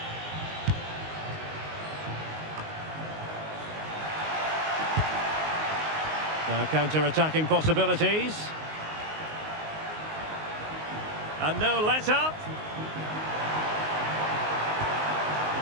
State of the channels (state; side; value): late; left; 19 ms